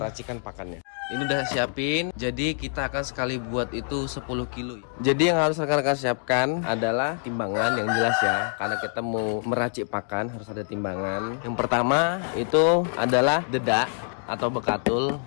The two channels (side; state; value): right; silent; 59 dB below the other